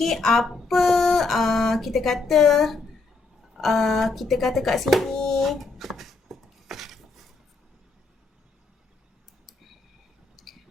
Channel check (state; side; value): quieter; right; 3.8 dB